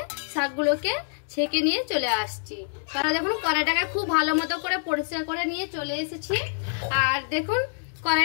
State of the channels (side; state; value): right; silent; digital silence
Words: শাকগুলোকে ছেঁকে নিয়ে চলে আসছি। তারা দেখুন কড়াইটাকে খুব ভালো মতো করে পরিষ্কার করে নিয়ে চলে এসেছি। আর দেখুন